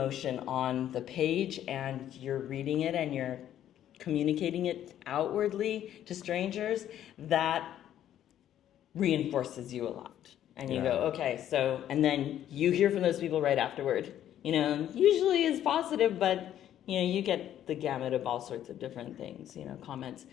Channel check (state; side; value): quieter; right; 11.2 dB